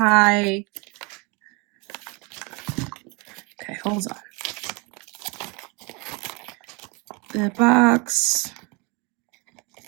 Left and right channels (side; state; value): left; quieter; 29.1 dB